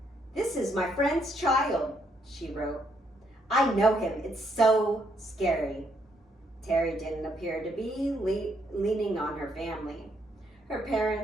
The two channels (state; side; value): normal; both; correlation 0.73